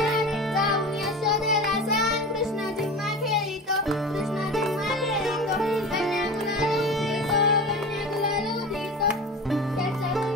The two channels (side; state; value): both; normal; correlation 0.32